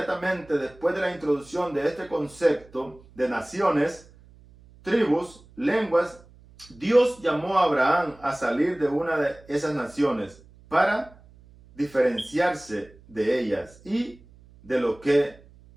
después de la introducción de este concepto de naciones, tribus, lenguas, Dios llamó a Abraham a salir de una de esas naciones para diferenciarse de ellas y de lo que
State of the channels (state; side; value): noise; right; hum, 25 dB below the sound